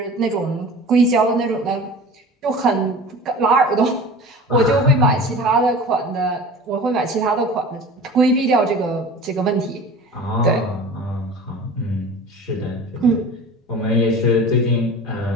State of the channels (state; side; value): normal; both; correlation 0.38